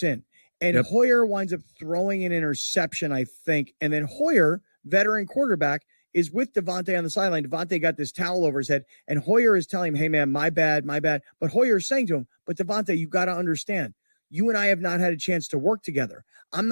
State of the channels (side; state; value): both; inverted; correlation -1.00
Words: in, and Hoyer winds up throwing an interception, I think, and then Hoyer, veteran quarterback, is with Devontae on the sideline. Devontae got this towel over his head, and Hoyer is telling him, hey, man, my bad. But Hoyer is saying to him, but Devontae, you got to understand, you and I have not had a chance to work together. I'm